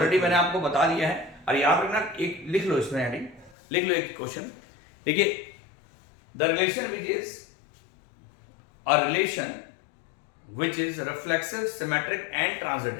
मैंने आपको बता दिया है। और याद रखना, एक लिख लो इसमें हेडिंग, लिख लो एक क्वेश्चन। देखिए, the relation which is a relation which is reflexive, symmetric and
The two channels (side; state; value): right; drops out; at 3.6 s